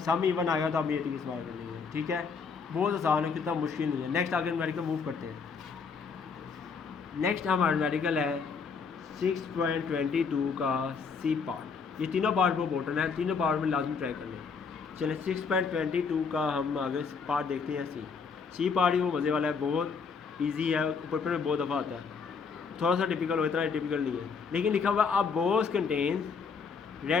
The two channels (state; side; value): quieter; right; 5.5 dB